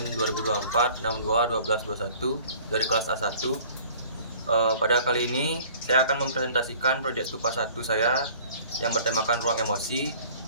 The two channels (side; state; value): both; inverted; correlation -0.50